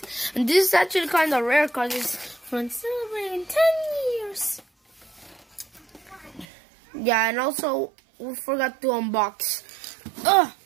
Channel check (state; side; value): drops out; left; at 6.5 s